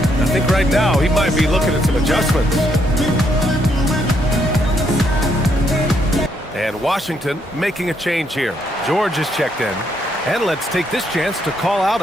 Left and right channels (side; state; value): both; normal; correlation 0.74